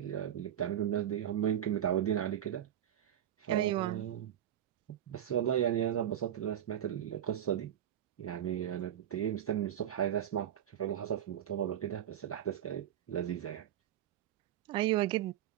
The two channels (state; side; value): quieter; left; 10.7 dB